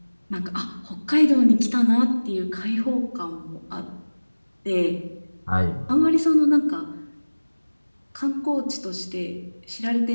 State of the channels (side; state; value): both; inverted; correlation -1.00